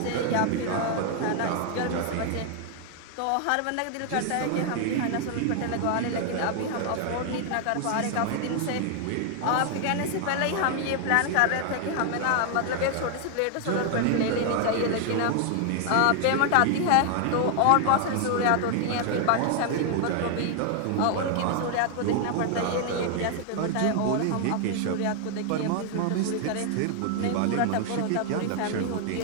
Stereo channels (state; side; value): different; both; correlation 0.00